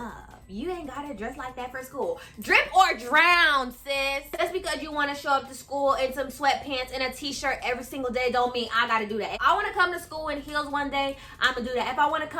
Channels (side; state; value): both; identical; correlation 1.00